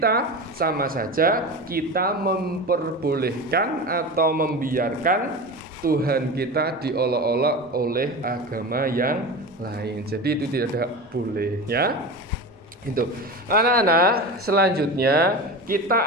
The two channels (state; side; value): normal; both; correlation 0.27